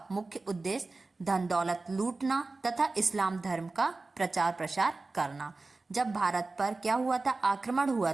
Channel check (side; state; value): left; quieter; 3.5 dB